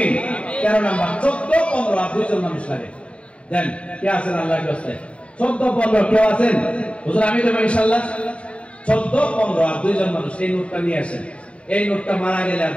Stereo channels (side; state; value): right; late; 0.061 ms